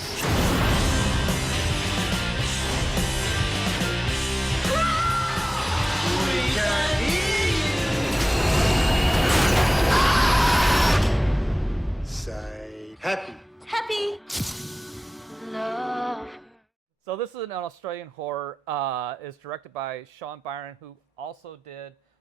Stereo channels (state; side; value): normal; both; correlation 0.97